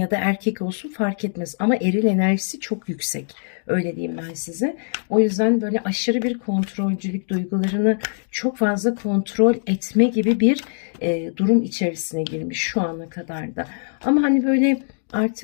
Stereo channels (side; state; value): right; silent; digital silence